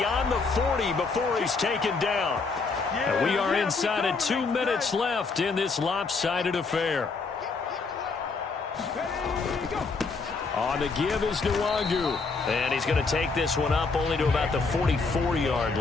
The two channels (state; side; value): quieter; right; 4.3 dB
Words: the 40 before he's taken down. And we are inside of 2 minutes left in this lopsided affair. On the give is Nwangu. And he's going to take this one up only to about the 44-yard